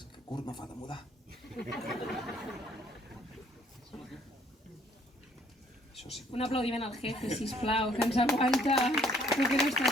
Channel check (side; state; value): both; normal; correlation 0.62